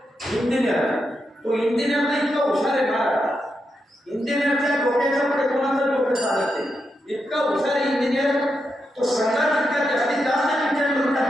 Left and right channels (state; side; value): normal; both; correlation 0.85